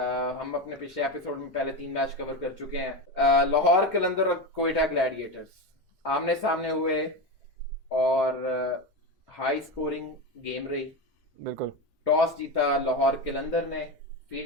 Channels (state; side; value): normal; both; correlation 0.18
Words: हम अपने पिछले एपिसोड में पहले 3 मैच कवर कर चुके हैं। लाहौर कलंदर और क्वेटा ग्लैडिएटर्स आमने सामने हुए और हाई स्कोरिंग गेम रही। बिल्कुल। टॉस जीता लाहौर कलंदर ने,